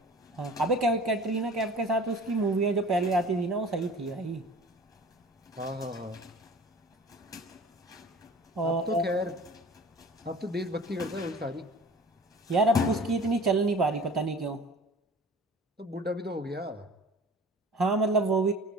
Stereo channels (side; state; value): both; normal; correlation 0.43